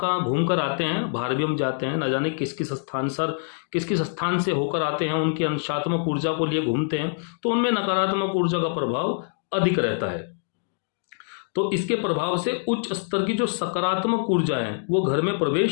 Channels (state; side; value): silent; right; digital silence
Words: घूम कर आते हैं, बाहर भी हम जाते हैं, ना जाने किस किस स्थान से होकर आते हैं, उनकी अंशात्मक ऊर्जा को लिए घूमते हैं, तो उनमें नकारात्मक ऊर्जा का प्रभाव अधिक रहता है। तो इसके प्रभाव से उच्च स्तर की जो सकारात्मक ऊर्जा है वो घर में